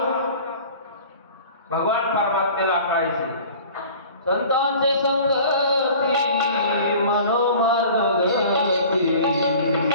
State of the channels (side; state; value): both; inverted; correlation -0.45